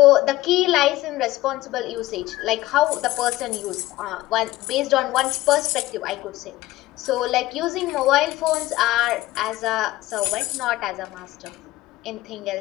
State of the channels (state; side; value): quieter; right; 17.3 dB